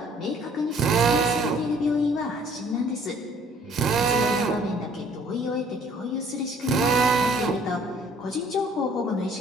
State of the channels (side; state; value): both; normal; correlation 0.58